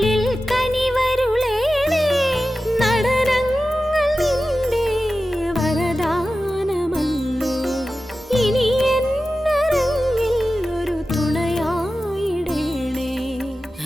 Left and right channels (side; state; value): both; normal; correlation 0.94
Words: കനിവരുളേണേ. നടനങ്ങൾ നിന്റെ വരദാനമല്ലോ. ഇനി